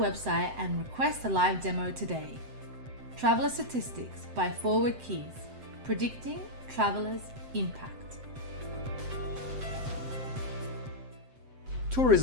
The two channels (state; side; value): late; left; 7.8 ms